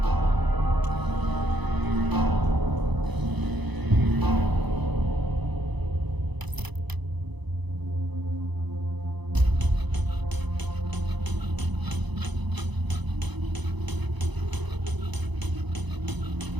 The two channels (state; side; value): late; left; 1.0 ms